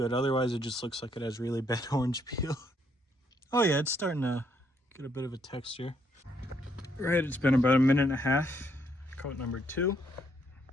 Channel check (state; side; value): normal; both; correlation 0.72